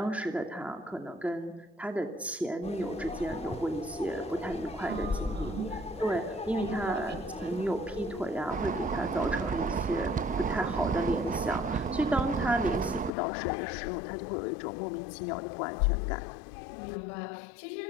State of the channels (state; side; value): drops out; right; at 13.1 s